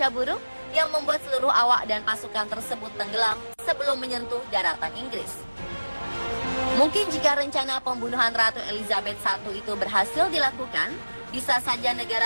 buruk yang membuat seluruh awak dan pasukan tersebut tenggelam sebelum menyentuh daratan Inggris. Mungkin jika rencana pembunuhan Ratu Elizabeth I itu berhasil dilakukan, bisa saja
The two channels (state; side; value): inverted; both; correlation -1.00